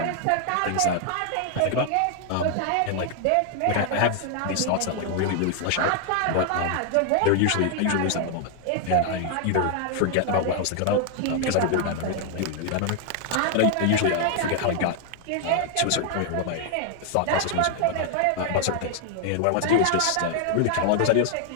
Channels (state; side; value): different; both; correlation 0.00